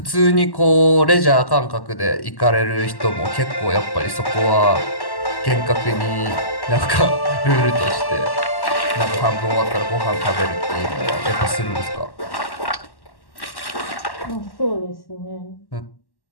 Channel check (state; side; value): late; right; 1.1 ms